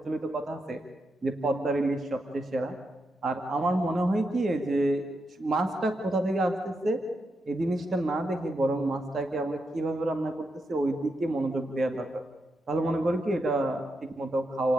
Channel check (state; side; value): normal; both; correlation 0.84